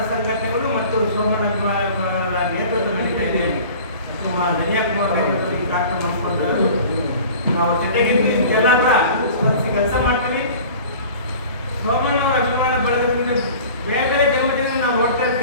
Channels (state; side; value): inverted; both; correlation -0.43